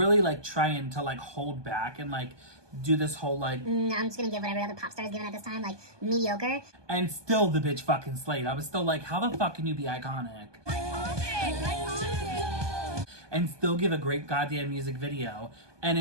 like trying to like hold back and like do this whole like, I'm just gonna give what every other pop star is giving at this time, like mediocre. And still the bitch fucking slayed. I was still like, how the fuck can you be iconic? And still give a great goddamn music video. And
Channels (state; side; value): late; left; 1.2 ms